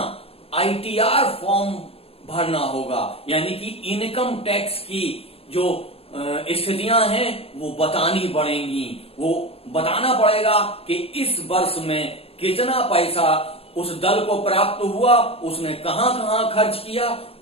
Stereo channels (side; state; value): right; late; 0.28 ms